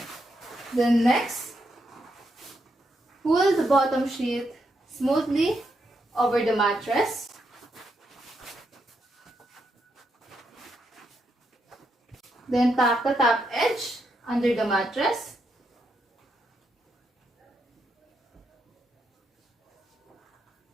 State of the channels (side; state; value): both; normal; correlation 0.81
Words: Then next, pull the bottom sheet smoothly over the mattress. Then tap the top edge under the mattress.